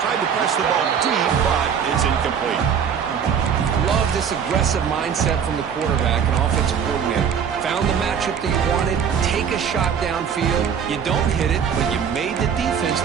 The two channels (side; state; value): left; quieter; 7.5 dB